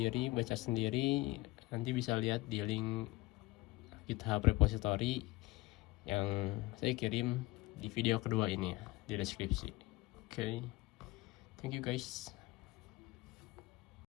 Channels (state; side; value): quieter; right; 20.1 dB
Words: baca sendiri, nanti bisa lihat di link GitHub repository yang saya kirim di video kedua ini ya, di deskripsi. Oke. Thank you guys.